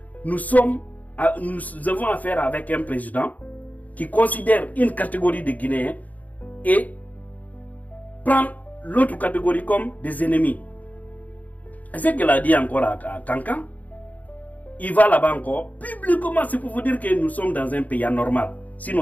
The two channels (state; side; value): late; right; 0.077 ms